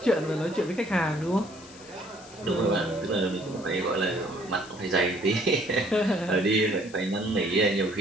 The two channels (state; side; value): noise; left; hiss, 20 dB below the sound